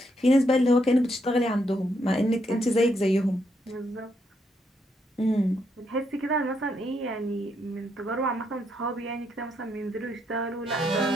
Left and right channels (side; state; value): both; normal; correlation 0.77